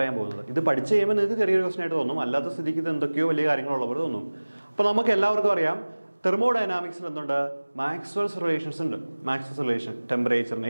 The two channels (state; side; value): inverted; both; correlation -1.00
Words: പോകുന്നത്. ഇത് പഠിച്ച് കഴിയുമ്പോൾ നിങ്ങൾക്ക് ചെറിയൊരു ക്വസ്റ്റ്യൻ ആയിട്ട് തോന്നും, അല്ലാത്ത സ്ഥിതിക്ക് ഇത് എന്തൊക്കെയോ വലിയ കാര്യങ്ങളുള്ളവർ തോന്നും. അപ്പോൾ നമുക്ക് എല്ലാവർക്കും അറിയാം, തെർമോഡൈനാമിക്സിൽ എന്തുണ്ട്, മാക്സ്വെൽസ് റിലേഷൻസ് ഉണ്ട്. മാക്സ്വെൽസ് റിലേഷൻ